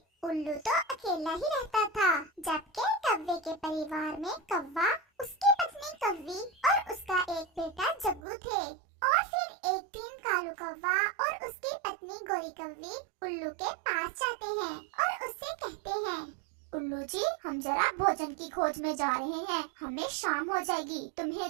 उल्लू तो अकेला ही रहता था, जबकि कौवे के परिवार में कौवा, उसकी पत्नी कौवी और उसका एक बेटा जग्गू थे। और फिर एक दिन कालू कौवा और उसकी पत्नी गोरी कौवी उल्लू के पास जाते हैं और उससे कहते हैं, उल्लू जी, हम जरा भोजन की खोज में जा रहे हैं। हमें शाम हो जाएगी। तुम्हें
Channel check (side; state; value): left; drops out; at 8.2 s